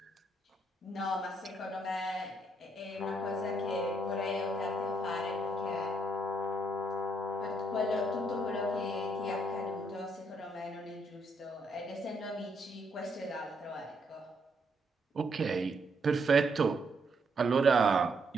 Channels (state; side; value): normal; both; correlation 0.74